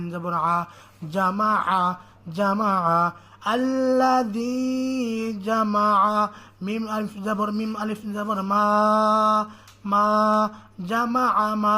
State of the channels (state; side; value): identical; both; correlation 1.00